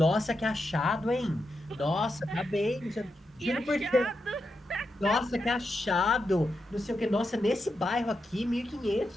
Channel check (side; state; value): both; normal; correlation 0.86